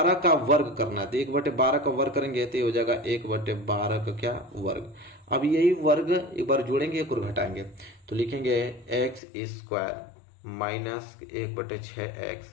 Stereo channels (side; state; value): right; drops out; at 9.2 s